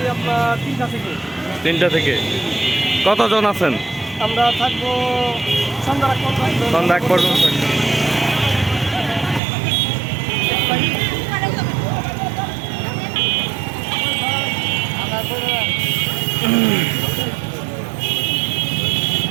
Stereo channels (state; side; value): drops out; left; at 9.4 s